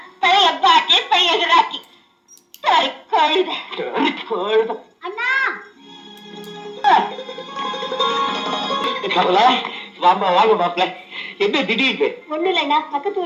பழைய பாட்டி பழைய ராக்கி சரி கழுத. அண்ணா கமலா, வாமா வாங்க மாப்பிள்ள. என்ன திடீர்னு? ஒண்ணு இல்லைண்ணா, பக்கத்து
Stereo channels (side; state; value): both; identical; correlation 1.00